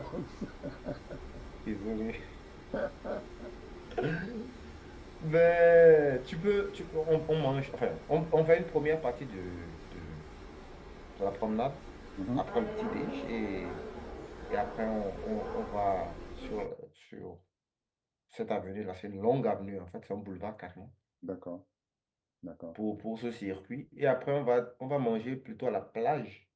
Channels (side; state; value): both; identical; correlation 1.00